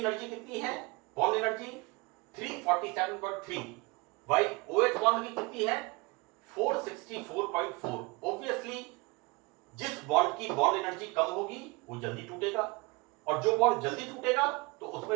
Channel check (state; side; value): quieter; left; 26.1 dB